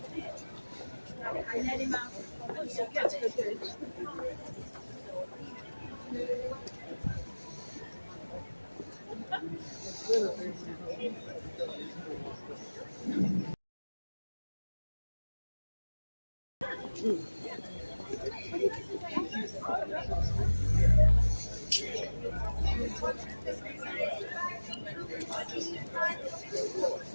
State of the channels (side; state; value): both; inverted; correlation -1.00